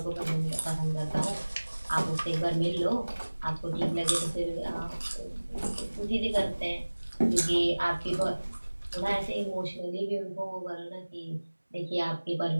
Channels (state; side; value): inverted; both; correlation -1.00